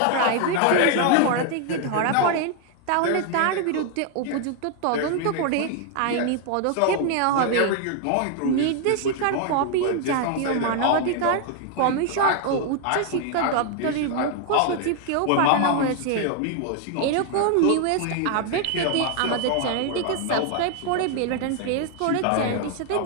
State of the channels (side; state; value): both; different; correlation 0.00